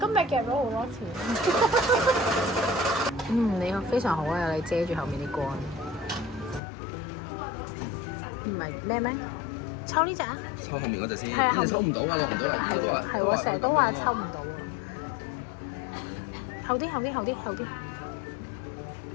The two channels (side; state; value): right; drops out; at 6.6 s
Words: 日夾咗好多錢。你非常好啊！你遮住後面啲杆。唔係咩咩？抽呢隻啊？抽後面嗰隻先。係啊，後面抽唔到㗎，落唔到嚟。係喎，係喎，成日都話抽唔到啊！後啲。